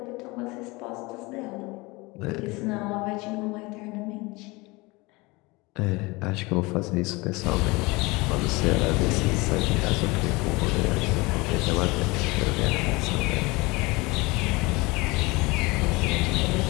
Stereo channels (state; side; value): quieter; right; 24.1 dB